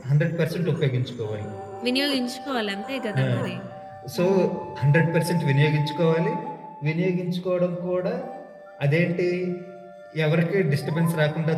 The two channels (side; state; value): both; identical; correlation 1.00